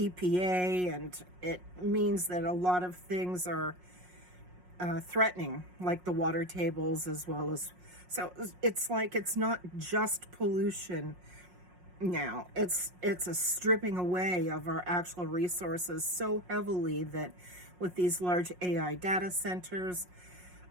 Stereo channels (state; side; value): late; left; 5.5 ms